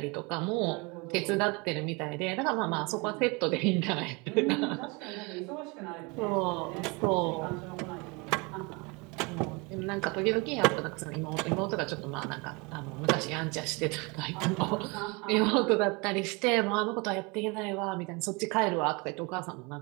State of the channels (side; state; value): left; quieter; 28.2 dB